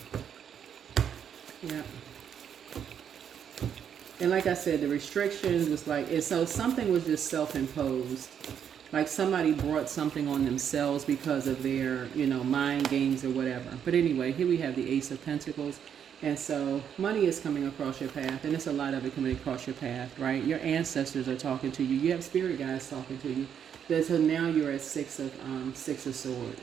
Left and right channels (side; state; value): left; quieter; 8.4 dB